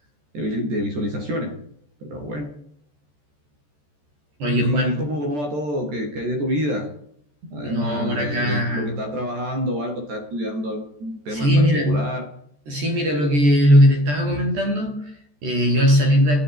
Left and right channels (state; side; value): late; left; 14 ms